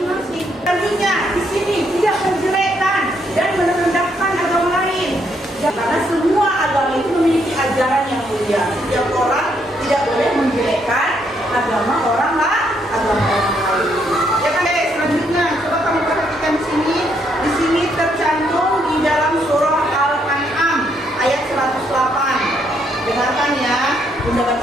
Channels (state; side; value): normal; both; correlation 0.73